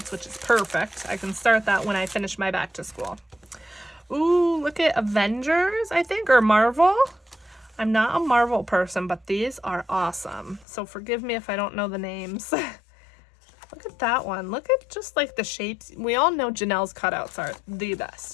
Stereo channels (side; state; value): right; drops out; at 10.7 s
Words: which is perfect. I can start that when I finish my back to school. Ooh, look at Avengers, I think, or Marvel. I'm not a Marvel person, but these are awesome. So forgive me if I don't know the names. Look at that one. Look at just like the shapes. We all know Janelle's cutouts are the